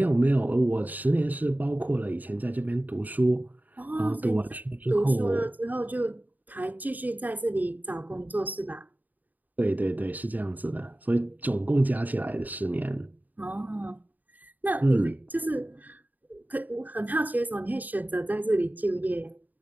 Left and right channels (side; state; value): left; late; 0.083 ms